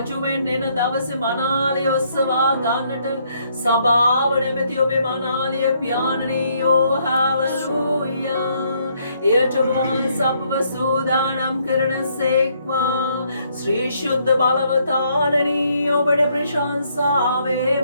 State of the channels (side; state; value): both; inverted; correlation -0.70